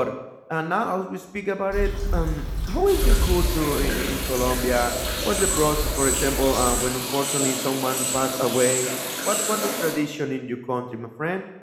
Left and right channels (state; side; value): identical; both; correlation 1.00